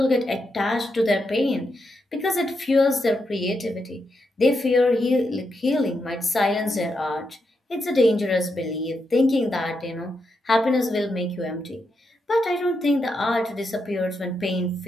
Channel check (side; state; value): both; normal; correlation 0.83